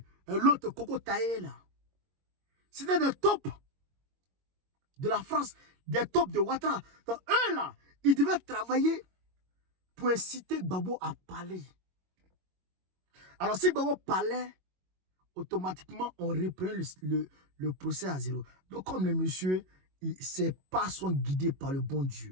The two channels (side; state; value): left; late; 22 ms